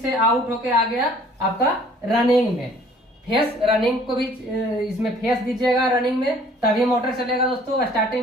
आउट होके आ गया आपका रनिंग में। फेस रनिंग को भी इसमें फेस दीजिएगा रनिंग में, तभी मोटर चलेगा दोस्तों।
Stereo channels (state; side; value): normal; both; correlation 0.55